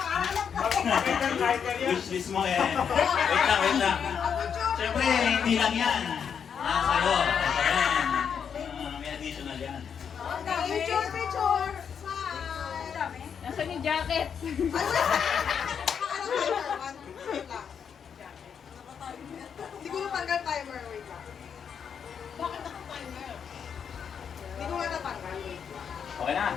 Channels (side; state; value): right; quieter; 7.3 dB